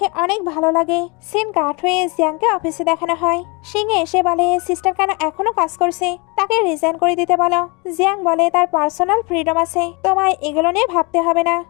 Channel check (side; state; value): right; quieter; 29.5 dB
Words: অনেক ভালো লাগে। সিন কাট হয়ে জিয়াংকে অফিসে দেখানো হয়। সিংহে এসে বলে সিস্টার কেন এখনো কাজ করছে, তাকে রিজাইন করে দিতে বলো। জিয়াং বলে তার পার্সোনাল ফ্রিডম আছে, তোমায় এগুলো নিয়ে ভাবতে হবে না।